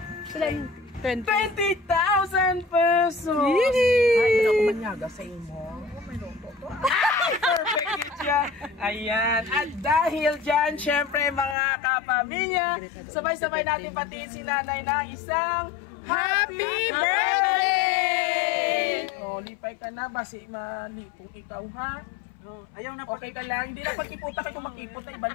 20,000 pesos! Ay, hindi ako manyaga sa imo. Perfect yun siya. Ayan. At dahil dyan, syempre mga kapamilya, sabay-sabay natin patiin si nanay ng isang Happy Birthday! O, lipay ka na. Basi malipong ikaw, ha? Ayaw na Okay ka lang. Hindi na pagkiputa kayo kung makipot na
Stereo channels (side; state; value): right; drops out; at 11.6 s